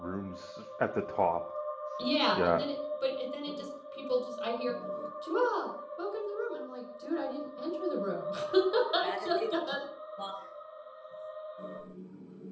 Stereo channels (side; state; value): both; identical; correlation 1.00